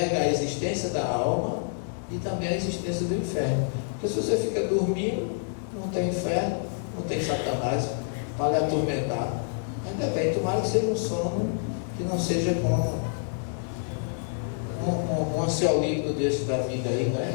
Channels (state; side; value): silent; right; digital silence